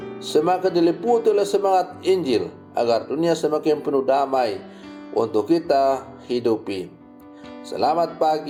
semakin diliputi oleh semangat Injil, agar dunia semakin penuh damai untuk kita hidupi. Selamat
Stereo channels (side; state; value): both; identical; correlation 1.00